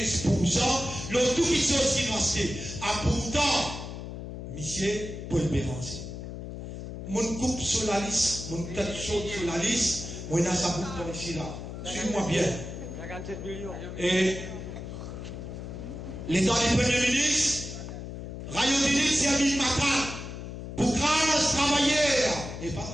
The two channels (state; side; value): noise; left; hum, 9 dB below the sound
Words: l'autre tout qui sont aussi nous acheter. Ah pourtant, monsieur Paul Béranger, mon coupe sur la liste, mon tête chaude sur la liste, moi il y a ça pour ici là. Suis-moi bien. Et l'état du Premier ministre, Rayodini Servin Macan, pour grâce travailleurs, et pas